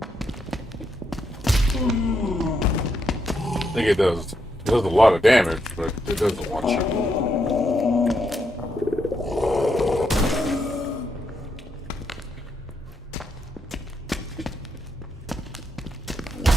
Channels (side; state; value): both; normal; correlation 0.80